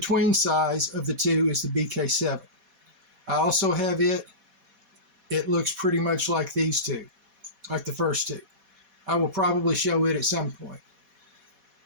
size of the 2 is the BK7. I also have it. It looks pretty much like these 2, like the first 2. I will probably show it at some point.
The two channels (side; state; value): left; late; 4.1 ms